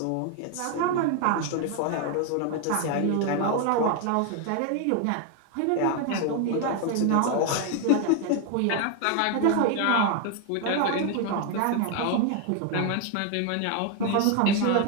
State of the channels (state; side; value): different; both; correlation 0.01